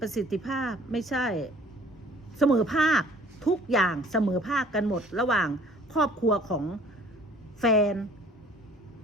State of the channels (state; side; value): normal; both; correlation 0.53